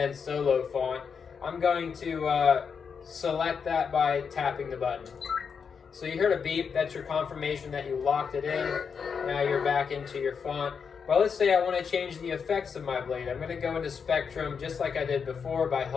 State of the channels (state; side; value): quieter; right; 6.2 dB